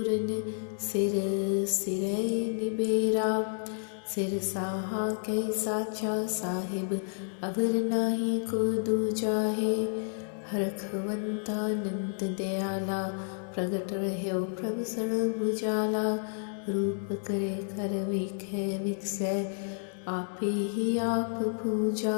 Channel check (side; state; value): right; silent; digital silence